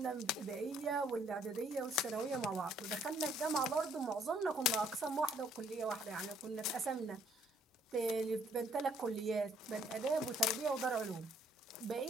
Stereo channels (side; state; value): both; normal; correlation 0.63